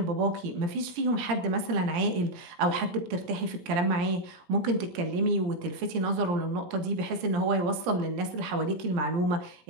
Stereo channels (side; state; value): left; late; 17 ms